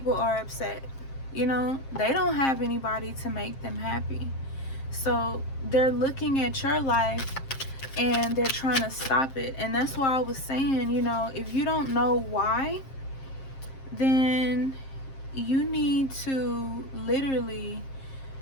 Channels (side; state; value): right; late; 7.5 ms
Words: are upset. They don't have anybody to make them happy. So they're looking at your life and they're trying to stop it. And that's why I was saying, if you don't know why, then you need to literally